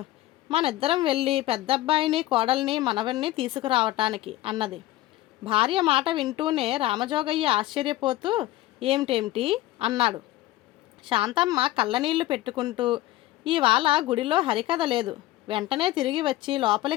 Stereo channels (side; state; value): right; quieter; 16.1 dB